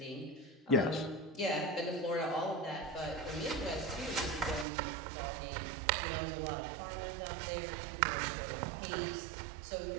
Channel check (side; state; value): left; drops out; at 4.7 s